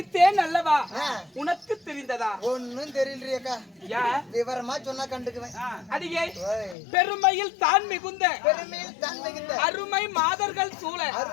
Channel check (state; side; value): drops out; right; at 6.8 s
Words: அல்லவா உனக்கு தெரிந்ததா ஒன்னும் தெரியலையக்கா விவரமா சொன்னா கண்டுக்குவேன் அடியே பெருமையில் தான் மிகுந்த பெருமையில் தான் மிகுந்த அருமை மாதர்கள் சூழ